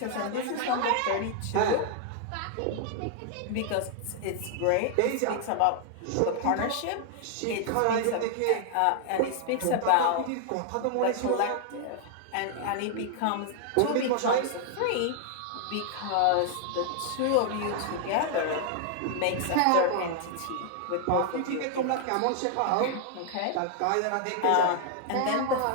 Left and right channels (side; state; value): both; different; correlation 0.00